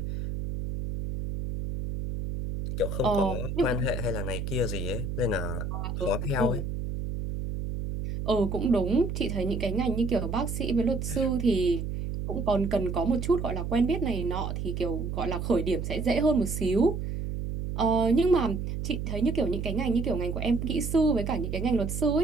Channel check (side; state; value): right; noise; hum, 4 dB below the sound